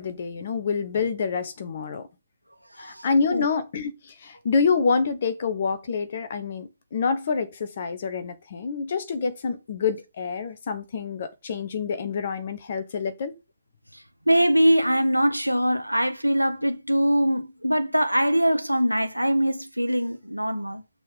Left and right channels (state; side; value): inverted; both; correlation -0.87